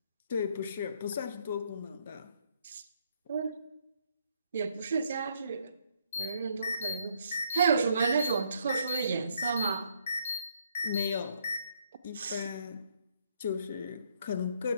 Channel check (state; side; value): inverted; both; correlation -0.70